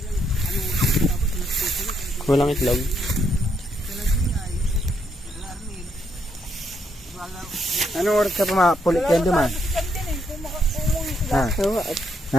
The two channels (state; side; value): normal; both; correlation 0.75